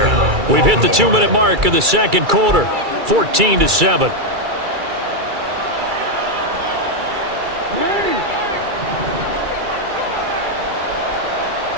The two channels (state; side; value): late; left; 2.3 ms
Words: We've hit the 2-minute mark of the second quarter, 14-7.